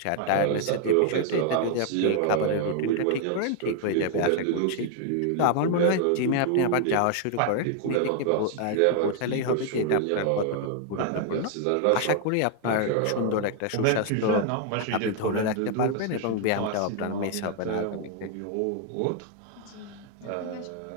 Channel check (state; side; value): different; both; correlation 0.00